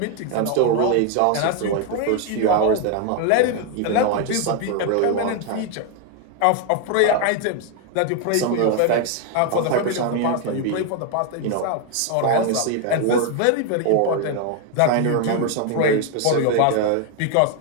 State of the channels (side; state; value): both; different; correlation 0.01